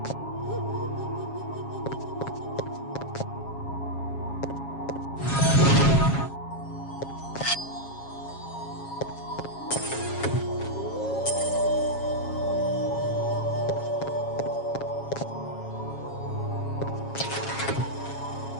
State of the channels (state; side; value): late; right; 7.3 ms